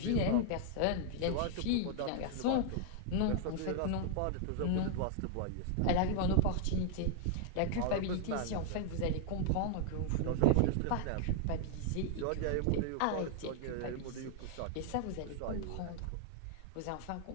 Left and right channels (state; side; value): different; both; correlation 0.00